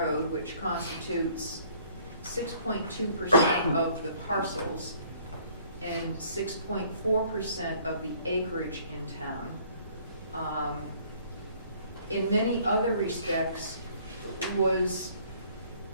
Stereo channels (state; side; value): inverted; both; correlation -0.58